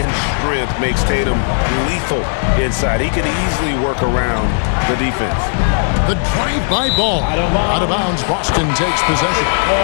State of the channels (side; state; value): right; silent; 58 dB below the other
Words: strength makes Tatum lethal inside. He can easily work around the defense. The drive-by Ball. Out of bounds, Boston takes possession.